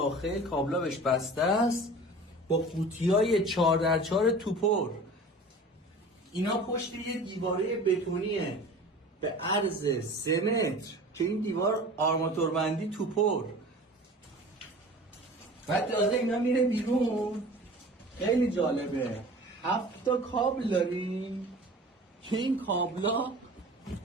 کابلا بهش بسته است با قوطیای 4x4 توپر. اینا پشت یه دیواره بتونیه به عرض 3 متر که این دیوار آرماتوربندی توپر. بعد تازه اینا میره بیرون. خیلی جالبه، 7 تا کابل داریم که این کابلا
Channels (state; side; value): normal; both; correlation 0.41